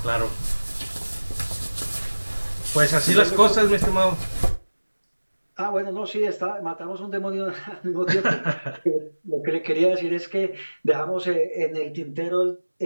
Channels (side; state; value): both; inverted; correlation -1.00